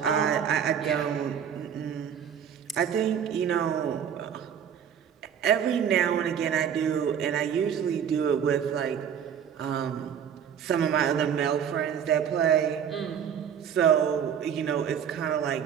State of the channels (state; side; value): quieter; left; 8.4 dB